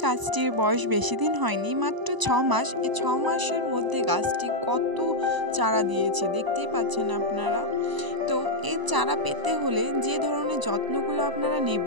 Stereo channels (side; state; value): left; late; 1.0 ms